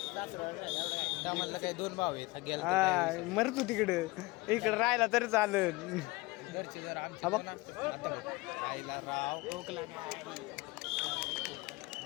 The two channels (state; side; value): quieter; right; 22.5 dB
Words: त्या म्हणलं काय 2 भाव आहेत गेला हा मर तू तिकडं इकडे राहिला तरी चालेल घरचे जर आमचे हा बघ. कोण असतं, आता बघ, आईला राव टोकला